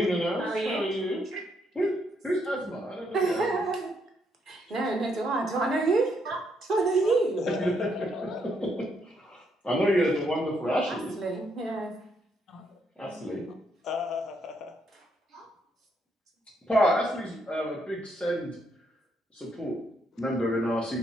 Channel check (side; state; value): both; normal; correlation 0.75